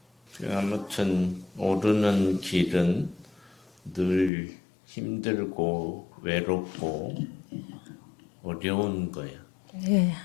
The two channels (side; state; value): right; drops out; at 4.3 s